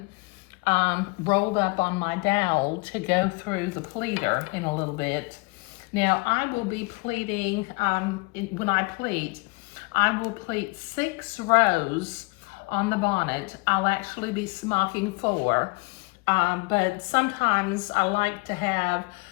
rolled up on my dowel to go through the pleater in a little bit. Now, I will be pleating, when I pleat, I will pleat 6 rows on the bonnet. I'll actually be smocking 4, but sometimes I like to have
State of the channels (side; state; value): right; quieter; 28.1 dB